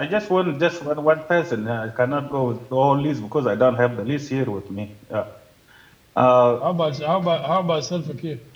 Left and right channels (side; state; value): both; identical; correlation 1.00